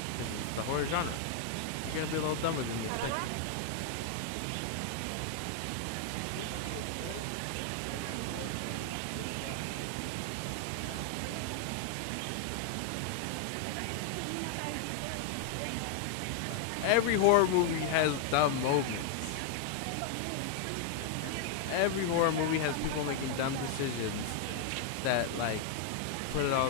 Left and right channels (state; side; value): different; both; correlation 0.00